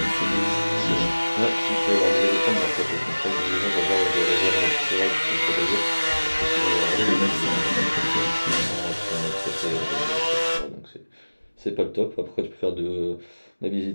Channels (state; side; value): inverted; both; correlation -1.00